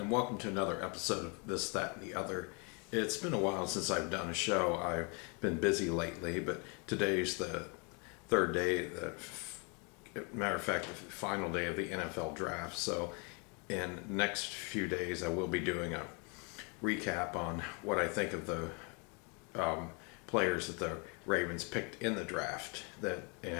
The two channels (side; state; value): right; quieter; 34.1 dB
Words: welcome to another episode of This, That, and the Other. It's been a while since I've done a show. I've been busy lately, but today's the third day, matter of fact, the final day of the NFL draft. So in the next few days, I will be doing a recap on what I think of the players that the Ravens picked in the draft.